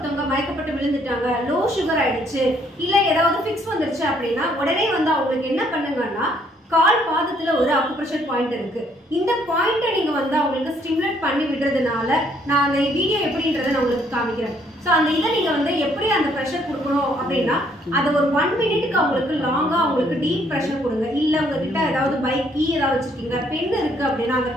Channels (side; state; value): both; normal; correlation 0.67